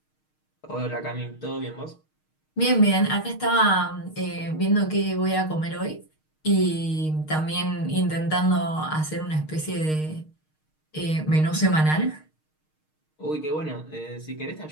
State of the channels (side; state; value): right; late; 6.5 ms